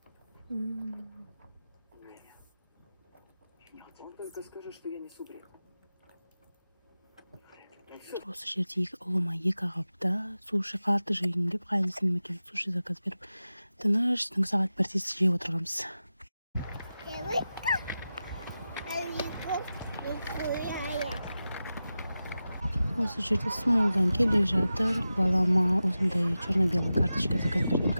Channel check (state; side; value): inverted; both; correlation -0.93